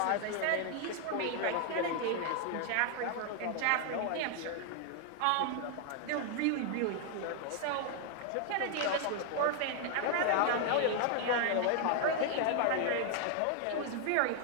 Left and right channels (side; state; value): both; different; correlation 0.00